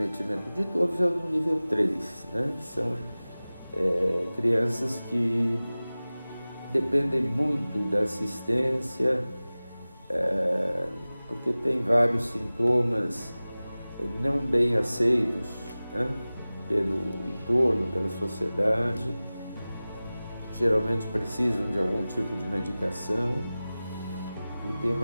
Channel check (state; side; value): inverted; both; correlation -0.98